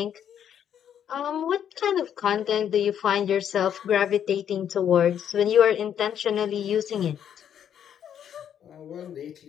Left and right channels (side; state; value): right; quieter; 9.2 dB